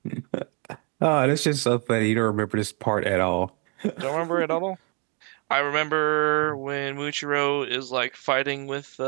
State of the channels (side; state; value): left; quieter; 35.3 dB